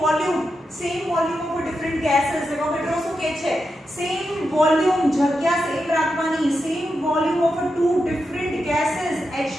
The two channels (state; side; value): normal; both; correlation 0.87